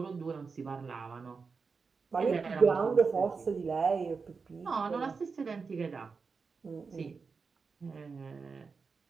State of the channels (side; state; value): left; quieter; 5.0 dB